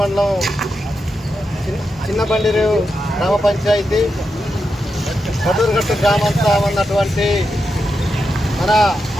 మండలం చిన్నబండిరు గ్రామ పంచాయతీ కటూరుగట్టు గ్రామంతా ఉన్నటువంటి మన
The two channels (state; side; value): normal; both; correlation 0.87